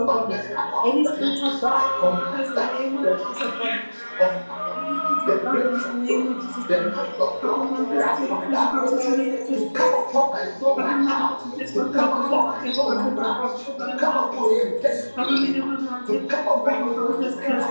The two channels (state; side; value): inverted; both; correlation -1.00